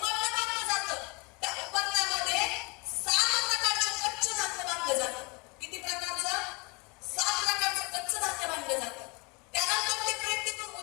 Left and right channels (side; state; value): right; quieter; 28.9 dB